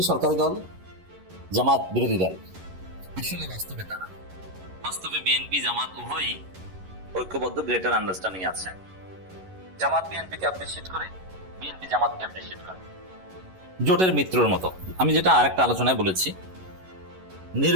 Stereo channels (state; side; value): late; left; 11 ms